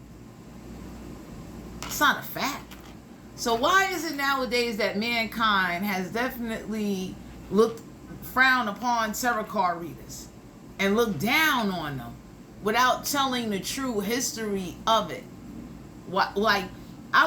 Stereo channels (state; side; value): identical; both; correlation 1.00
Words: It's not a fact. So why is it nowadays that mankind has definitely frowned upon tarot card readers and looked down on them without telling the true history of it? Like,